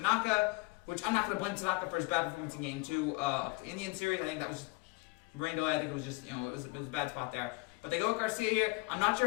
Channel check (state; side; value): quieter; right; 25.0 dB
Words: which I'm not going to blame Tanaka for his bad performance in Game 2 of the Indian series. I think that was just rain delay. I think it was just, it was a bad spot there. But they go with Garcia here. I'm not sure